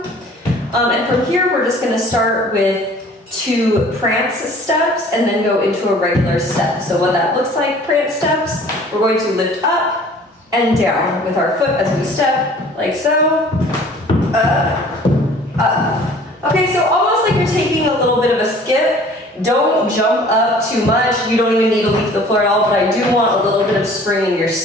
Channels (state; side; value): normal; both; correlation 0.50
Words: And from here, we're just gonna start with 2 prance steps and then go into a regular step. So what that looks like, prance steps, we're going to lift up and down with our foot as we step, like so, up, up. Okay, so almost like you're taking a little bit of a skip. Don't jump up too much. You don't even need to leave the floor at all, but I do want a little bit of spring in your